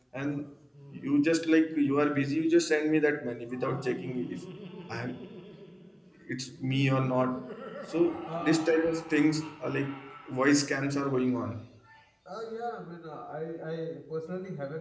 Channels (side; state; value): both; identical; correlation 1.00